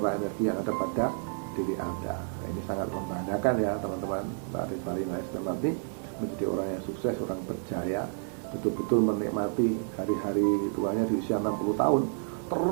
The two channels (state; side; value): silent; left; 58 dB below the other